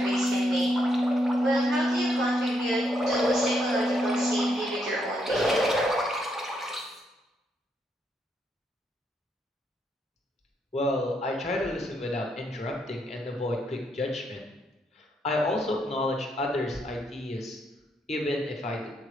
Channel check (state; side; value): normal; both; correlation 0.77